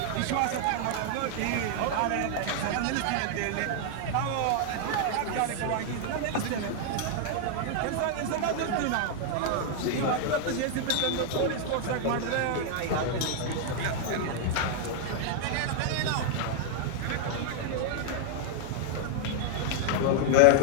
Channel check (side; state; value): both; different; correlation 0.00